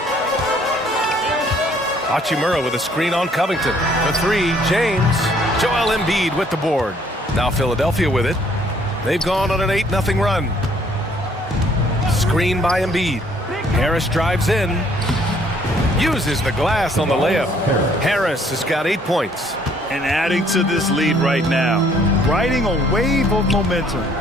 Hachimura with a screen on Covington. The 3, James. Joel Embiid with the board. Now Philadelphia with it. They've gone on an 8-0 run. Screen by Embiid. Harris drives in. Uses the glass on the layup. Harris has got 8 points. And adding to this lead right now. Riding a wave of momentum.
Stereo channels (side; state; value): both; normal; correlation 0.62